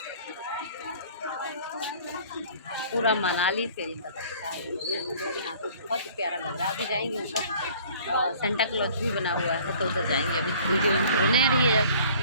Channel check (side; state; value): both; inverted; correlation -0.51